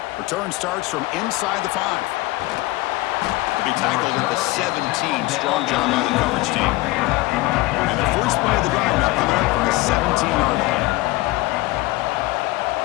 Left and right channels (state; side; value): quieter; right; 20.2 dB